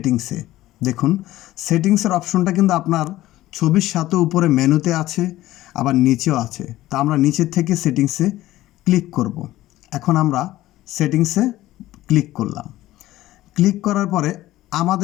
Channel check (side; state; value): right; quieter; 15.7 dB